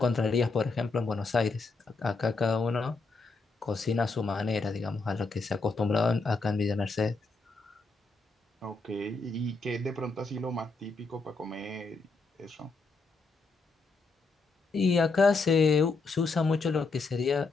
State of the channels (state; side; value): quieter; right; 3.9 dB